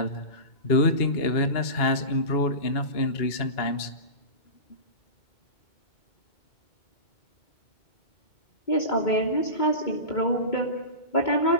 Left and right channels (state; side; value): late; right; 2.2 ms